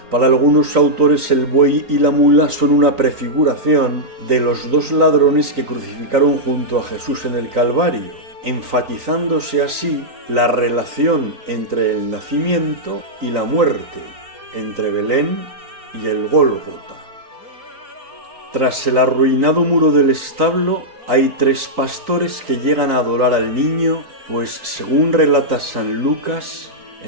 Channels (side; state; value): left; late; 3.9 ms